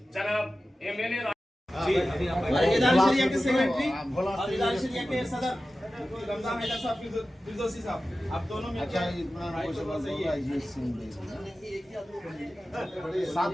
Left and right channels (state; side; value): normal; both; correlation 0.95